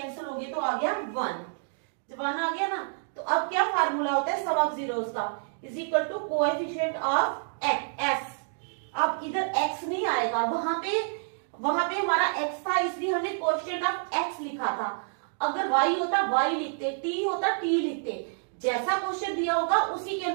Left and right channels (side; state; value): left; silent; digital silence